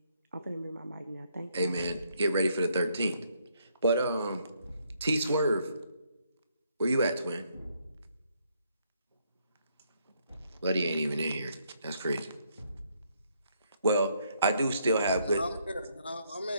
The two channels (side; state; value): both; inverted; correlation -0.72